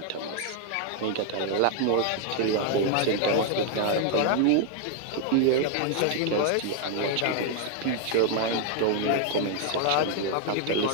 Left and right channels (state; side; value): different; both; correlation 0.00